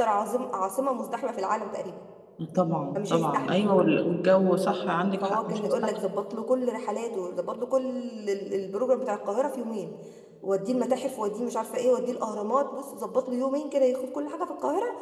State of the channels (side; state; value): both; identical; correlation 1.00